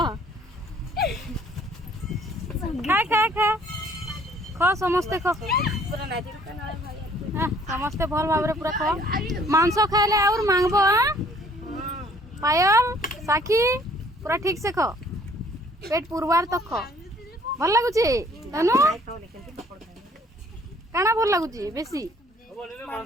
खा खा खा खा समस्ते खा हाँ, समस्ते भल भाव पूरा खा मांस खाइले और मांगबो हाँ पायल साखी पूरा ठीक से खा पेट पुरवार तक खा भल लगुची तनु काना भल लगुची बेसी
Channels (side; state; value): both; normal; correlation 0.59